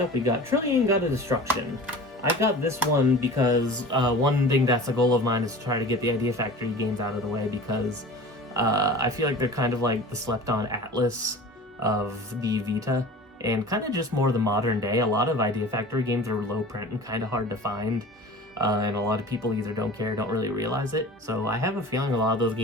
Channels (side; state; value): both; normal; correlation 0.39